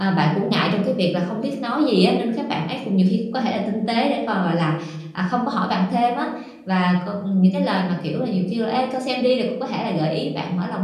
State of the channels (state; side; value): identical; both; correlation 1.00